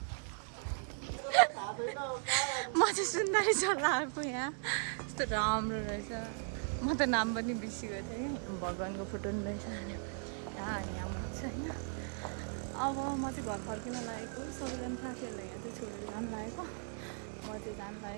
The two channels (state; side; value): silent; left; 53 dB below the other